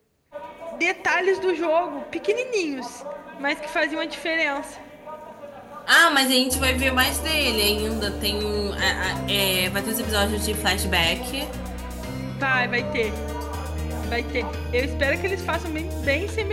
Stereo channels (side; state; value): both; identical; correlation 1.00